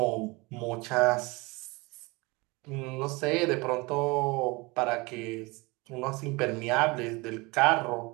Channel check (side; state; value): left; quieter; 25.1 dB